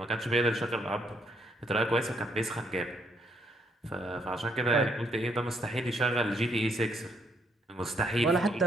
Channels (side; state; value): both; normal; correlation 0.71